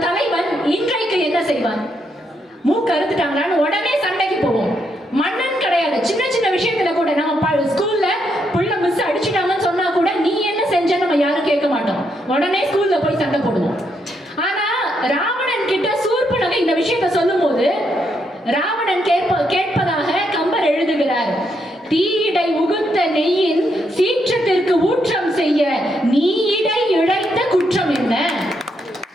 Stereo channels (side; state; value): both; normal; correlation 0.78